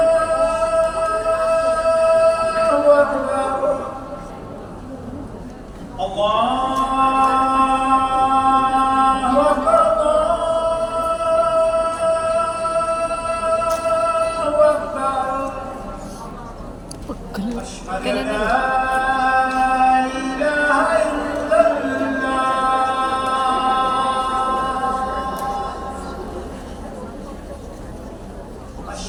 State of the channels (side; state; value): both; identical; correlation 1.00